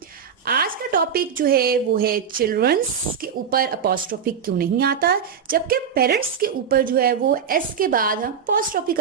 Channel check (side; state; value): left; quieter; 7.3 dB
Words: आज का टॉपिक जो है वो है चिल्ड्रंस के ऊपर अपॉस्ट्रोफी क्यों नहीं आता, जबकि पेरेंट्स के ऊपर जो है वो एस के बाद हम अपॉस्ट्रोफी